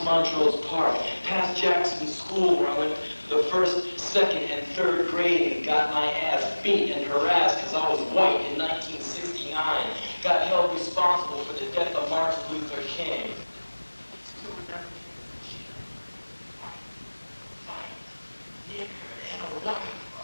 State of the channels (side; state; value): both; inverted; correlation -1.00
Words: Montrose Park, past Jackson School where I went the first, second, and third grade and got my ass beat and harassed because I was white in 1969. Got held responsible for the death of Martin Luther King. Nigger and a white.